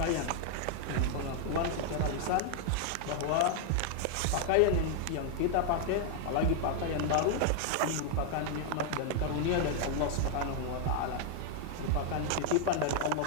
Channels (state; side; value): different; both; correlation 0.00